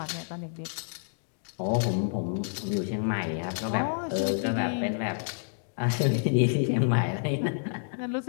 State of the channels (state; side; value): silent; right; digital silence